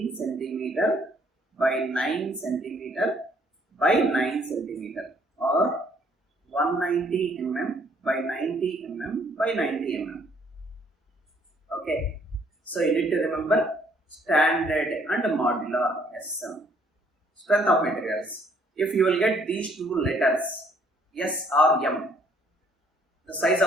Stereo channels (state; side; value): normal; both; correlation 0.64